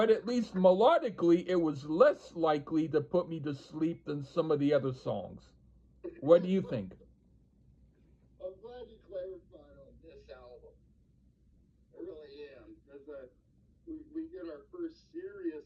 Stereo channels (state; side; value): identical; both; correlation 1.00